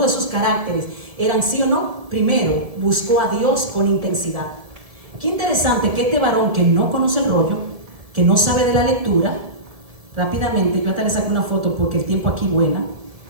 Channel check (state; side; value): late; left; 1.7 ms